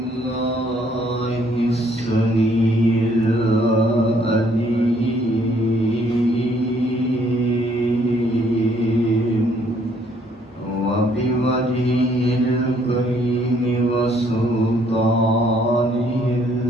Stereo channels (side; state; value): both; normal; correlation 0.65